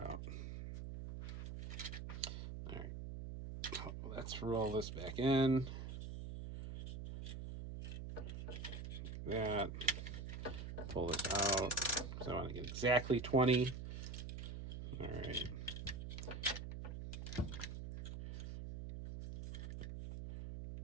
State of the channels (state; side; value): noise; right; hum, 6 dB below the sound